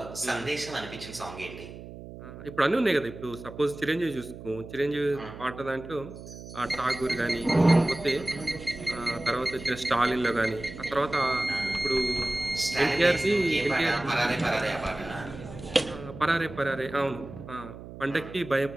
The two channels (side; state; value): right; noise; hum, 13 dB below the sound